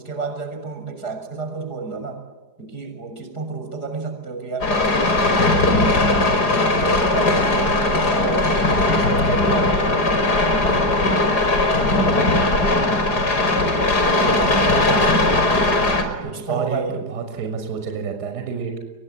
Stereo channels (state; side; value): late; right; 4.9 ms